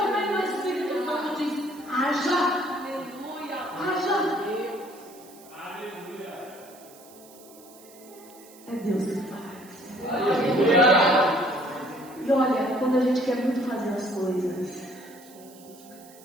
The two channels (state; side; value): noise; right; hiss, 22 dB below the sound